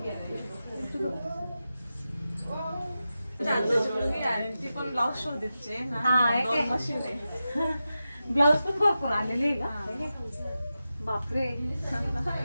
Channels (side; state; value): both; inverted; correlation -0.92